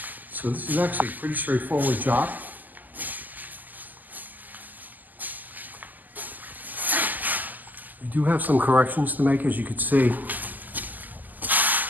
So this is actually a pretty straightforward job. We do have some corrections to make, as you can see,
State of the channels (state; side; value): late; left; 0.084 ms